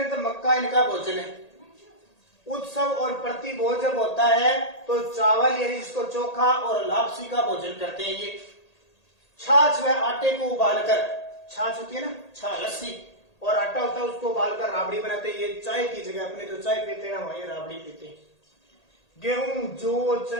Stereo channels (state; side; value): late; right; 1.8 ms